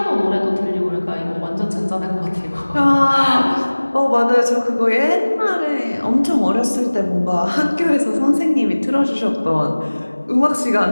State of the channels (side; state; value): both; inverted; correlation -1.00